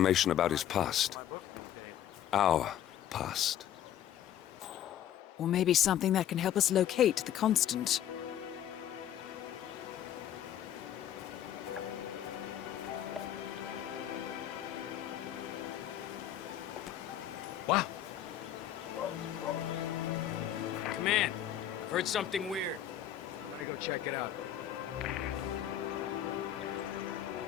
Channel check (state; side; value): quieter; right; 10.9 dB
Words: about his past. Our past. Or maybe something that can help us locate the Constant. Wow. Come in. I've heard something weird. I'm gonna go check it out.